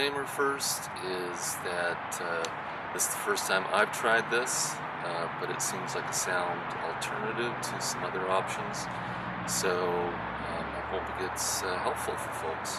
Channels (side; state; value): both; identical; correlation 1.00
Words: first is that this is the first time I've tried this, but it seems like a sound alternative to some other options, so I hope it gets helpful for